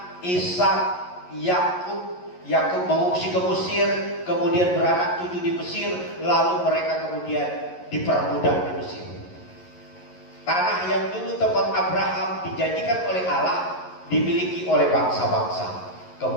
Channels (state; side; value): late; right; 11 ms